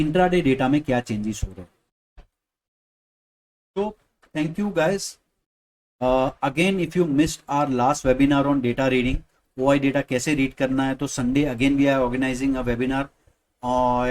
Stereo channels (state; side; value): identical; both; correlation 1.00